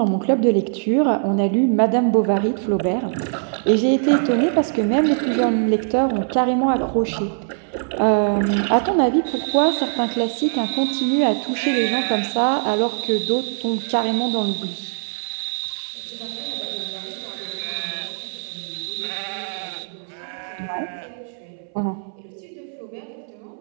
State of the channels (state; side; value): silent; left; 61 dB below the other